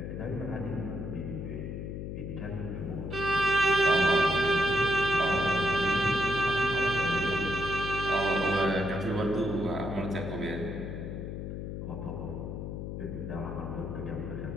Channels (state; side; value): noise; left; hum, 6 dB below the sound